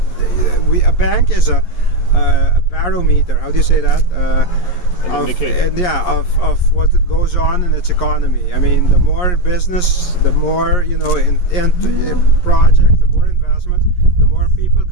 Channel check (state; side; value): late; right; 11 ms